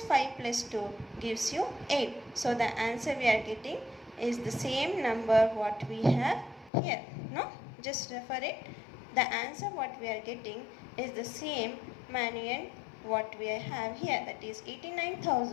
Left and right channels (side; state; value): right; drops out; at 6.7 s